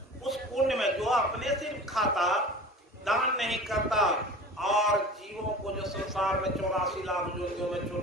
उस कुंड में जो अपने सिर्फ खाता, दान नहीं करता, और जीवों को जो संसार में 84 लाख योनियों में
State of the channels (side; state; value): both; normal; correlation 0.38